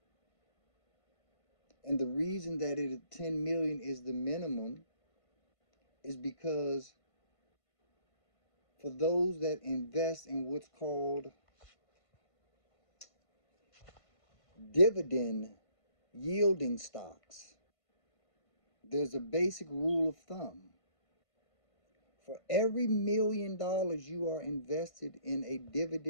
And the reason that 10 million is the minimum is because for those that invest in what's called dividend yielding stocks, there's a basic rule of thumb. For every $1 million you are invested in a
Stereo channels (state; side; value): late; right; 1.5 ms